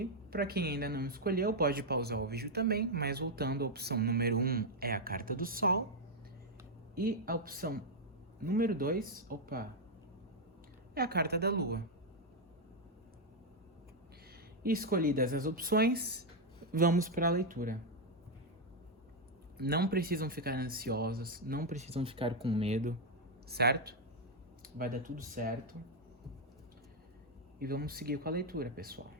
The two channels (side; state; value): both; normal; correlation 0.01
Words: Para quem ainda não escolheu, pode pausar o vídeo também. Mas voltando, a opção número 1 é a carta do Sol. E a opção número 2, é a carta da Lua. E escolhidas as opções, vamos para a leitura. Não precisam ficar ansiosos, não precisam ficar com medo, certo? Vai dar tudo certo. E vamos seguir com a leitura, pessoal.